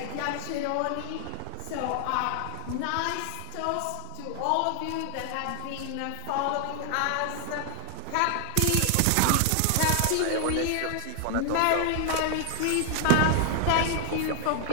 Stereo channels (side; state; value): both; different; correlation 0.00